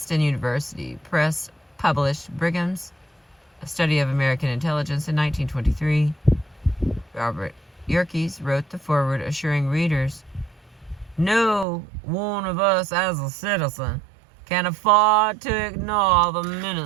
University Press published Brigham's A Study of American Intelligence in 1923. Robert Yerkes wrote the foreword, assuring readers, "No one of us as a citizen can afford to ignore the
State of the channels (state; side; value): drops out; left; at 11.7 s